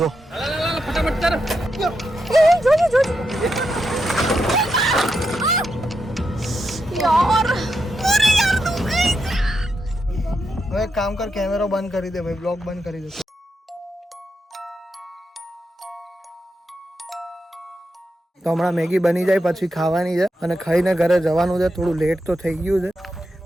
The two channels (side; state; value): both; normal; correlation 0.85